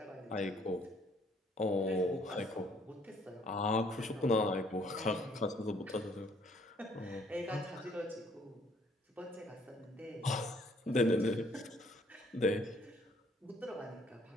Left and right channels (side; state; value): both; normal; correlation 0.63